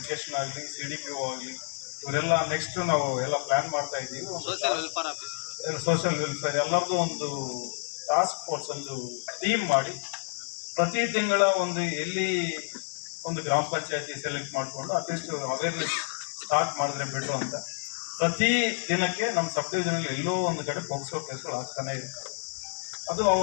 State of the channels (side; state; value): right; silent; 59 dB below the other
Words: ಆಗಲಿ, CDPO ಆಗಲಿ, ಇವರೆಲ್ಲ ನೆಕ್ಸ್ಟ್ ನಾವು ಎಲ್ಲ ಪ್ಲಾನ್ ಮಾಡ್ತಾ ಇದ್ದೀವಿ. ಸೋಷಿಯಲ್ ವೆಲ್ಫೇರ್ ಎಲ್ಲರದ್ದು ಒಂದು ಟಾಸ್ಕ್ ಫೋರ್ಸ್, ಒಂದು ಟೀಮ್ ಮಾಡಿ ಪ್ರತಿ ತಿಂಗಳ ಎಲ್ಲಿ ಒಂದು ಗ್ರಾಮ ಪಂಚಾಯತಿ ಸೆಲೆಕ್ಟ್ ಮಾಡಿಕೊಂಡು ಅಟ್ಲೀಸ್ಟ್ ಅವೇರ್ನೆಸ್ ಸ್ಟಾರ್ಟ್ ಮಾಡಿದ್ರೆ ಬಿಟ್ಟು ಅಂತ ಪ್ರತಿ ದಿನಕ್ಕೆ ನಮ್ಮ ಸಬ್ ಡಿವಿಷನಲ್ಲಿ ಎಲ್ಲೋ ಒಂದು ಕಡೆ ಪೋಕ್ಸೋ ಕೇಸ್ಗಳು ಆಗ್ತಾನೆ ಇರ್ತವೆ. ಅದು